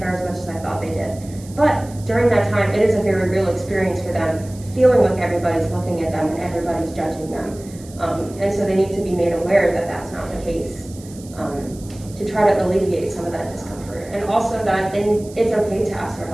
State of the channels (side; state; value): right; noise; hiss, 21 dB below the sound